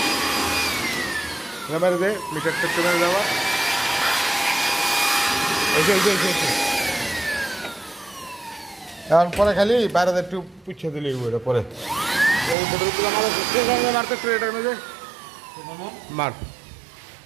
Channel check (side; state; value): left; drops out; at 12.6 s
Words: মেরে দে, মিটারটা একটু মেরে দেওয়া। এখন পরে খালি বাইরে একটু পুছে দিলি ওইটা পরে মারতে একটু এটা মেরে মার